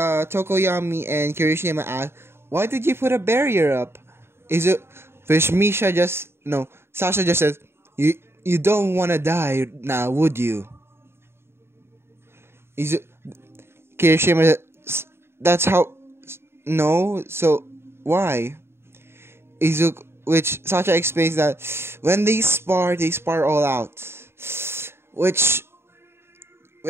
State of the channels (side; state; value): left; late; 0.12 ms